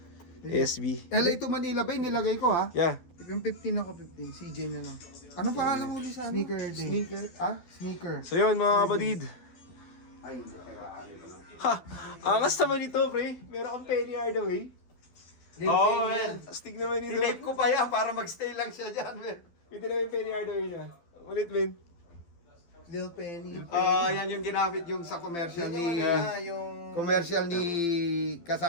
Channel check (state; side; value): late; right; 12 ms